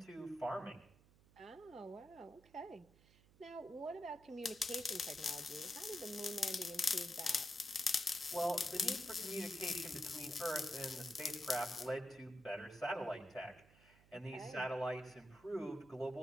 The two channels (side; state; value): right; noise; hum, 26 dB below the sound